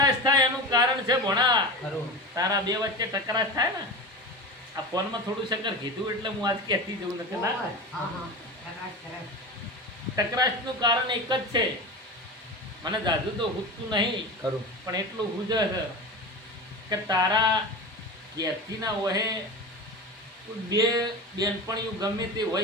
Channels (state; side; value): normal; both; correlation 0.27